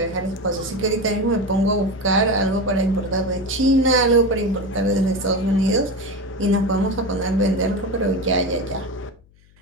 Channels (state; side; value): noise; left; hum, 30 dB below the sound